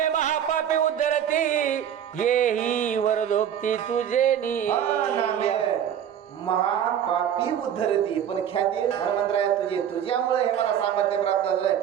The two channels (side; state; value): left; quieter; 9.4 dB